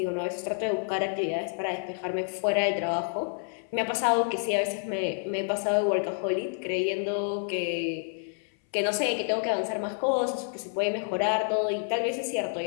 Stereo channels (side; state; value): right; silent; 59 dB below the other